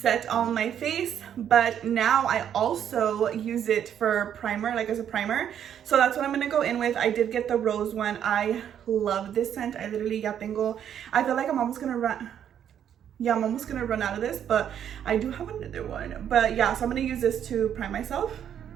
on my face, but now I also use it for primer, like as a primer. So that's what I'm gonna go in with. I did get the rose one. I love this scent. I literally ya tengo, I feel like I'm almost gonna run. Yeah, I'm almost gonna run out of this, but I do have another one. But yeah, so I'm gonna use this to prime myself.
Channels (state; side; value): quieter; left; 9.4 dB